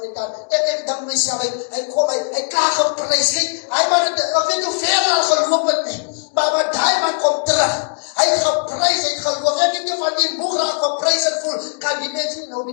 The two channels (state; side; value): silent; right; digital silence